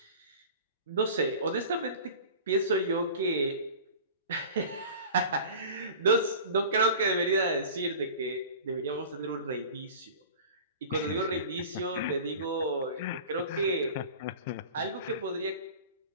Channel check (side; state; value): both; inverted; correlation -0.38